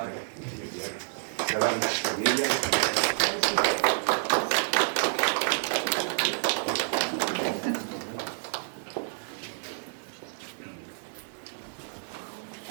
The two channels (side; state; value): left; silent; digital silence